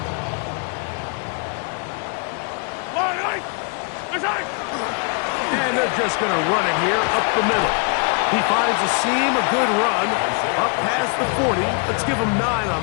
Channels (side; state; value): right; quieter; 36.4 dB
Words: And they're just going to run it here up the middle. He finds a seam, a good run, up past the 40. Let's give him 9 on